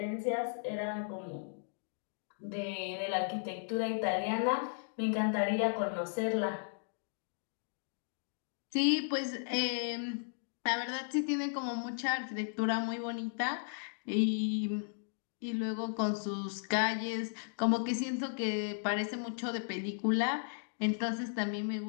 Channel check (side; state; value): right; silent; digital silence